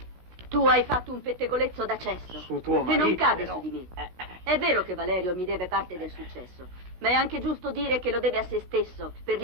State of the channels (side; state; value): left; late; 17 ms